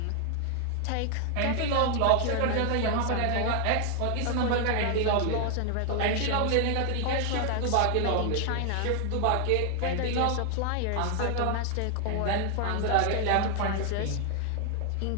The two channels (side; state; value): both; different; correlation 0.00